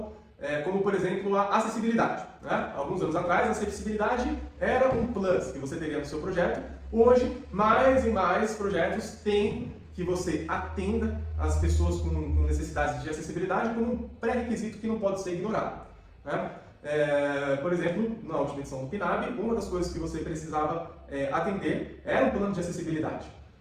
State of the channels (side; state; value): both; identical; correlation 1.00